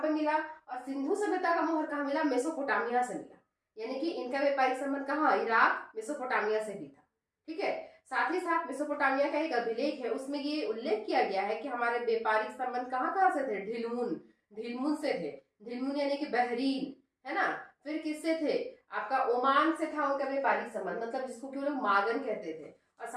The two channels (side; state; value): both; identical; correlation 1.00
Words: पे मिला, और सिंधु सभ्यता का मोहर कहाँ मिला, मेसोपोटामिया से मिला। यानी कि इनका व्यापारिक संबंध कहाँ, इराक मेसोपोटामिया से भी था। ठीक है, साथ ही साथ मेसोपोटामिया का एक अभिलेख है, उसमें ये उल्लेख किया गया है कि हमारे व्यापारिक संबंध कहाँ से थे, ढिलमुन से थे। ढिलमुन यानी कि बहरीन, है ना। फिर किससे थे, आपका ओमान से था उनका व्यापारिक संबंध, मतलब जिसको कि वो लोग मागन कहते थे। और